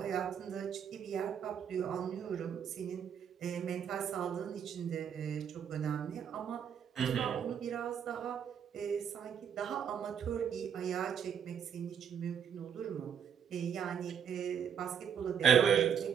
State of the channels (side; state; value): left; quieter; 8.0 dB